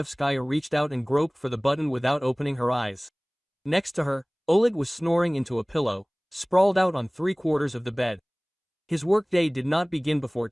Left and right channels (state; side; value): identical; both; correlation 1.00